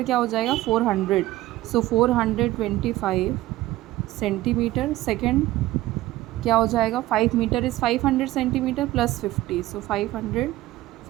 क्या हो जाएगा 400. सो 425 सेंटीमीटर. सेकेंड क्या हो जाएगा 5 metre is 500 centimetre plus 50, so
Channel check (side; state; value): left; quieter; 16.4 dB